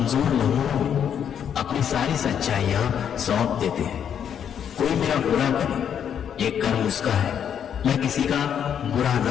लम्हों में अपनी सारी सच्चाइयां सौंप देते हैं। कोई मेरा बुरा करे ये कर्म उसका है, मैं किसी का बुरा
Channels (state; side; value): quieter; right; 8.6 dB